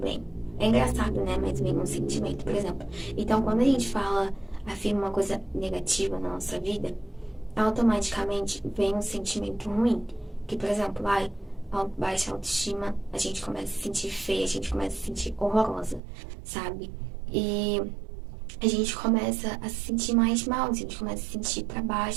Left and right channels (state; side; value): drops out; left; at 16.0 s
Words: É engraçado, né? Mas vem um sentimento, por exemplo. Então, quando a gente afirma uma coisa negativa na nossa vida, automaticamente vem um sentimento ruim. Que, por exemplo, baixa autoestima, a gente começa a se sentir feia, a gente começa a se sentir horrorosa, sabe? E a gente começa a se sentir mais mal, a gente começa a se sentir pra